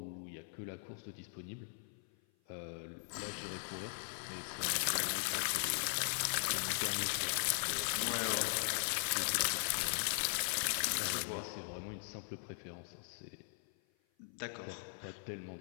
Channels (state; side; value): silent; right; 51 dB below the other